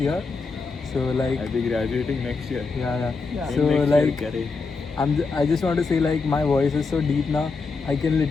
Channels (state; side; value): quieter; right; 4.4 dB